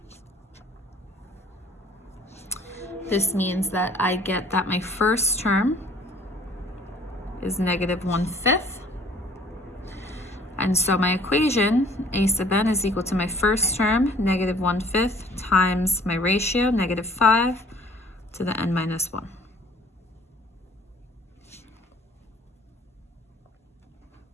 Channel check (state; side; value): normal; both; correlation 0.54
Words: this means that I get that my first term is -1/5. And so my equation, a sub n is equal to my first term, -1/5, times my ratio, -5, to the n minus 1.